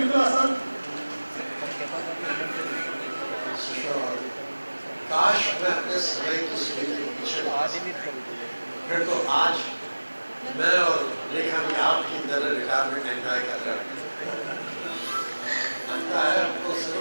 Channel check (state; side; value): inverted; both; correlation -1.00